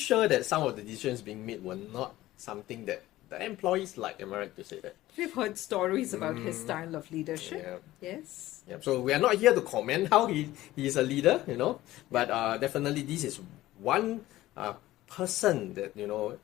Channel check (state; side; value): quieter; right; 16.0 dB